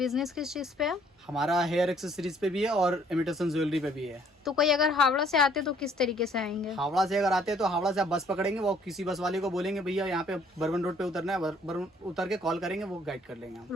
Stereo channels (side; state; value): both; normal; correlation 0.61